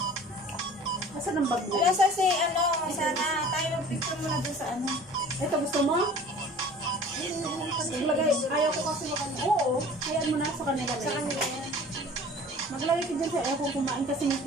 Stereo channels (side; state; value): both; normal; correlation 0.46